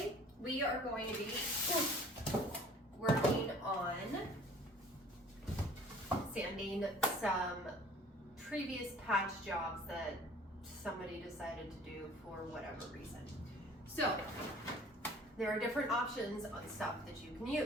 we are going to be working on sanding some previous patch jobs that somebody decided to do for whatever reason. So there are different options on stuff that you can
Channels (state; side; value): normal; both; correlation 0.50